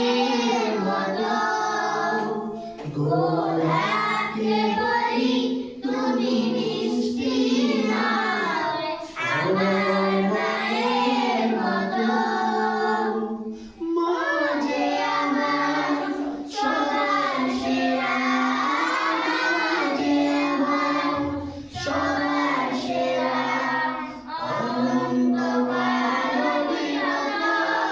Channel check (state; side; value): identical; both; correlation 1.00